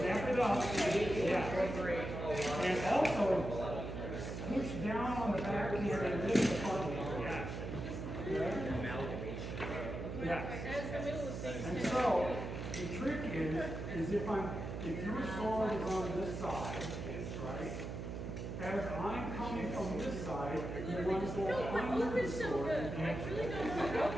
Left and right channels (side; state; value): right; noise; hum, 5 dB below the sound